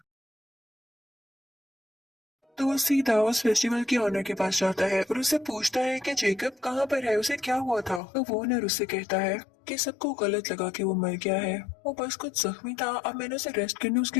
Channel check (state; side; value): drops out; right; at 8.0 s